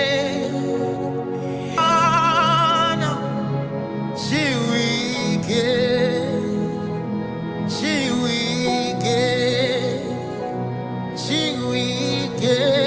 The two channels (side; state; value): both; identical; correlation 1.00